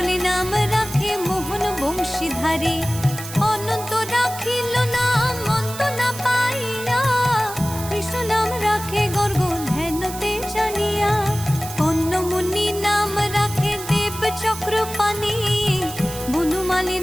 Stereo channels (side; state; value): right; noise; hiss, 11 dB below the sound